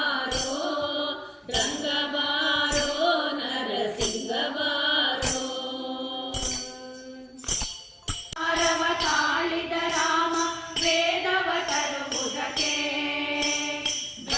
ರಂಗಬಾರೋ ನರಸಿಂಗ ಬಾರೋ ಅರವ ತಾಳಿದ ರಾಮ ವೇದವ ತರುವುದಕ್ಕೆ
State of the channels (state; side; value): identical; both; correlation 1.00